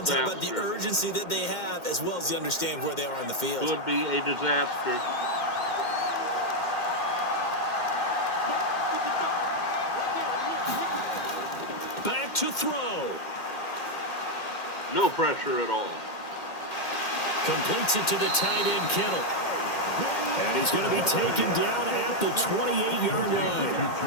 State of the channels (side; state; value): right; late; 2.1 ms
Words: How about the urgency that they have, as well as the understand where they are in the field? Could be a disaster. Back to throw. No pressure at all. Completes it to the tight end, Kittle. And he's going to be taken down at the 28-yard line.